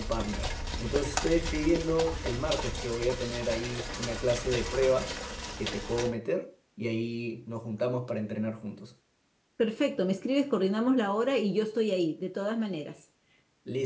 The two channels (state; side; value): identical; both; correlation 1.00